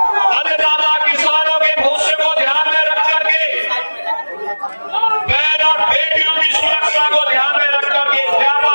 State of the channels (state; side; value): inverted; both; correlation -1.00